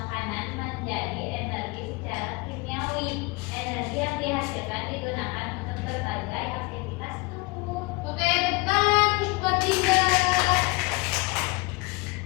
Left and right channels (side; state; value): right; quieter; 25.7 dB